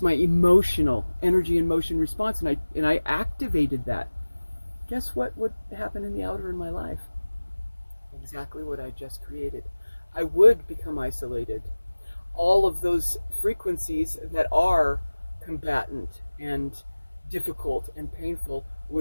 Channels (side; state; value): both; inverted; correlation -1.00